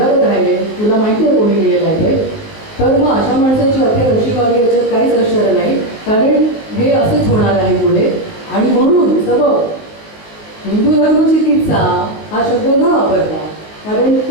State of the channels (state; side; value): late; right; 19 ms